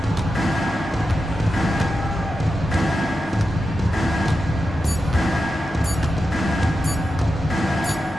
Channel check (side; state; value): both; normal; correlation 0.90